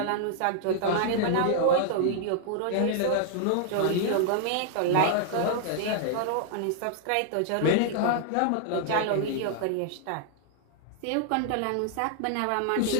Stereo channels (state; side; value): different; both; correlation -0.01